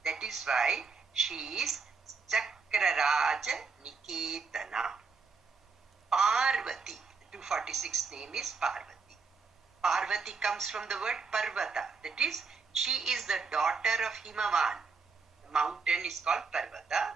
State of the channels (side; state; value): left; quieter; 4.8 dB